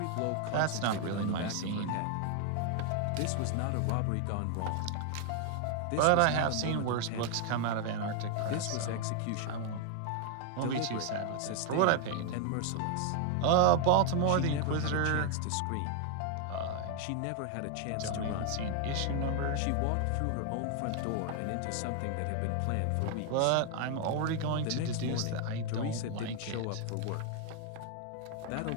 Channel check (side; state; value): both; different; correlation 0.00